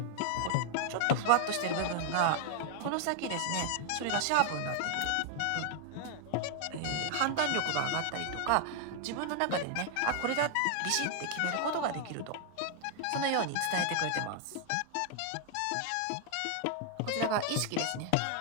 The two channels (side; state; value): both; different; correlation 0.00